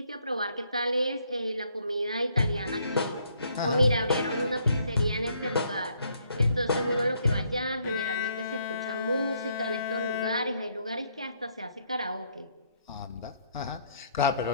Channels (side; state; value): both; inverted; correlation -0.68